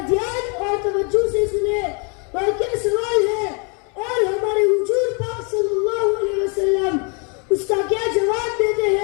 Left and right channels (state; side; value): quieter; right; 35.4 dB